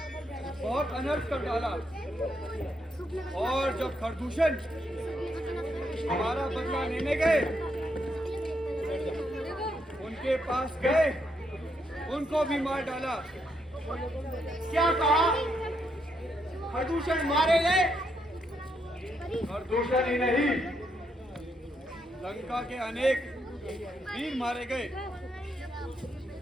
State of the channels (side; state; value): both; normal; correlation 0.78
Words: बहुत अनर्थ कर डाला, और जब खरदूषण हमारा बदला लेने गए, उनके पास गए, उनको भी मार डाला। क्या कहा? खरदूषण मारे गए? खरदूषण ही नहीं, लंका के अनेक वीर मारे गए।